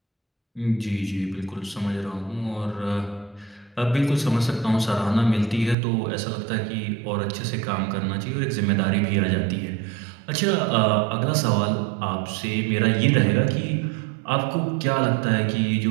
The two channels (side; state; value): left; drops out; at 5.8 s